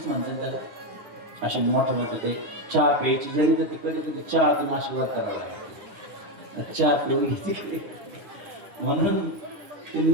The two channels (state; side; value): late; left; 9.5 ms